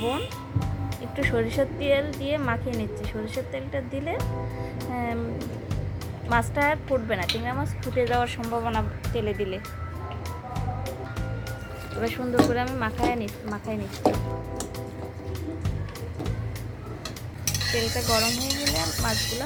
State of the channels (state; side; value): identical; both; correlation 1.00